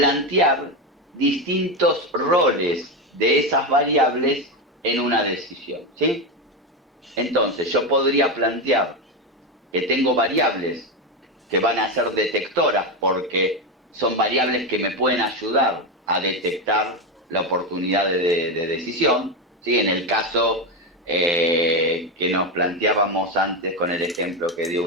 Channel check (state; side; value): normal; both; correlation 0.12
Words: distintos roles de esas variables en una decisión, ¿sí? Entonces, yo podría plantear que tengo variables que van a ser detectoras porque son variables que me pueden ayudar a detectar la oportunidad de decisión, ¿sí? En el caso que nos planteábamos antes con el ejemplo que dio